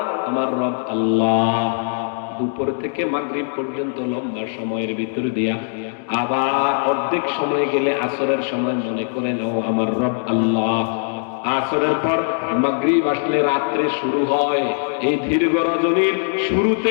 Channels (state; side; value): silent; right; 65 dB below the other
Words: আমার রব আল্লাহ। দুপুর থেকে মাগরিব পর্যন্ত লম্বা সময়ের ভিতর দিয়া আবার অর্ধেক সময় গেলে আসরের সময় মনে করে নাও আমার রব আল্লাহ। আসরের পর মাগরিব আসলে রাত্রে শুরু হয়। এই দীর্ঘ রজনীর